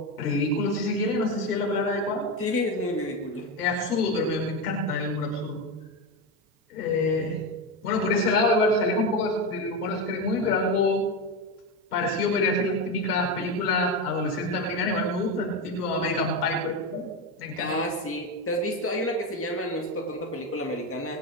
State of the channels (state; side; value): normal; both; correlation 0.15